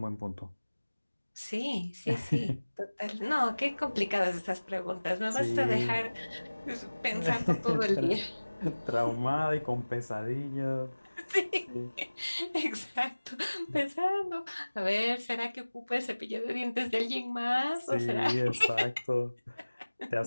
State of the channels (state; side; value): inverted; both; correlation -1.00